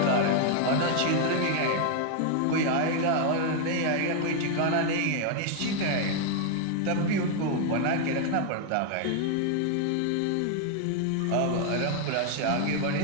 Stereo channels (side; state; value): both; different; correlation 0.00